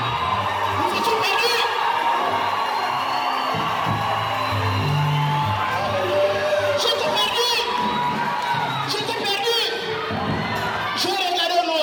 Nous étions perdus. J'étais perdu. J'étais perdu. Je regardais au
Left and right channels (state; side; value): identical; both; correlation 1.00